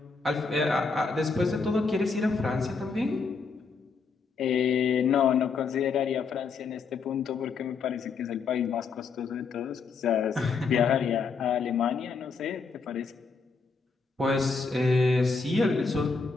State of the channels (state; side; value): quieter; right; 4.9 dB